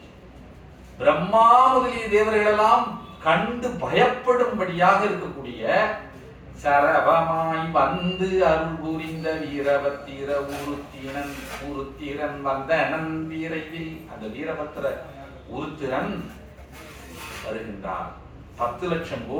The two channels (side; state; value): both; identical; correlation 1.00